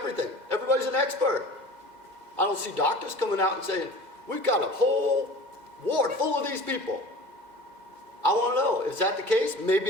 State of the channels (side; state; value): left; late; 2.0 ms